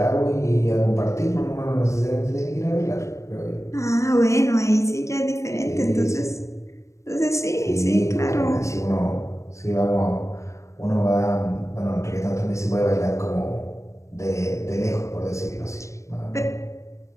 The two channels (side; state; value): right; late; 0.15 ms